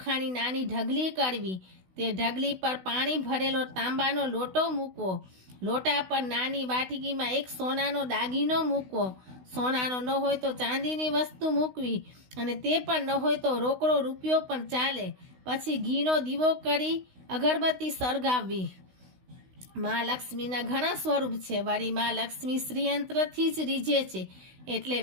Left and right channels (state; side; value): late; left; 16 ms